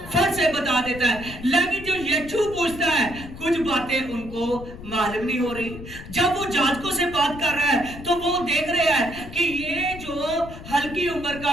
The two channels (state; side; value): noise; left; rumble, 13 dB below the sound